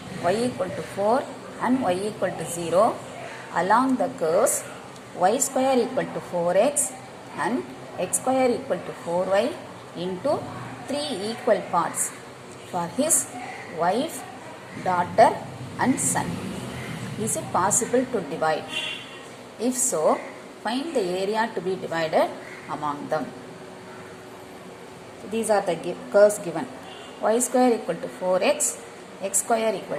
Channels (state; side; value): identical; both; correlation 1.00